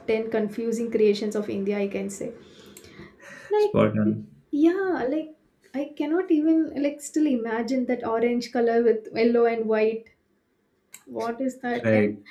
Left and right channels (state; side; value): identical; both; correlation 1.00